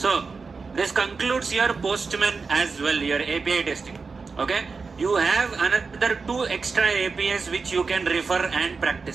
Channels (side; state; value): left; quieter; 4.6 dB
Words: So this concludes your Postman as well, your API testing. Okay? You have another 2 extra APIs which you can refer and